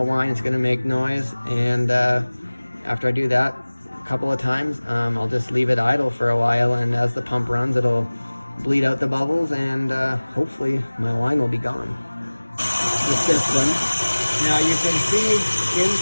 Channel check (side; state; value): both; inverted; correlation -1.00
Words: whine, it's gonna make noise, and after I do that a couple of times, I'll just leave it idle for a while, and as the pump runs, it'll bleed out the bubbles, and hopefully my wine will be gone. The system. Now you can see